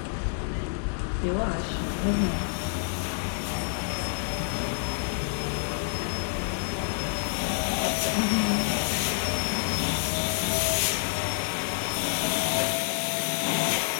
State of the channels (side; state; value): right; silent; 59 dB below the other